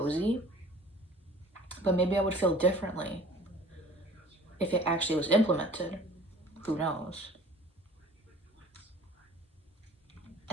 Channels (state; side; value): normal; both; correlation 0.48